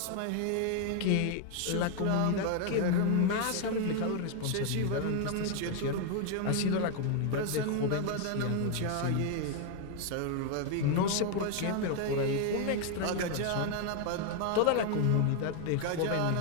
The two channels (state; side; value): different; both; correlation 0.01